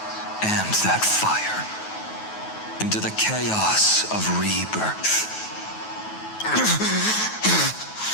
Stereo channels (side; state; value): right; late; 9.3 ms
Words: and that fire into the chaos of rebirth.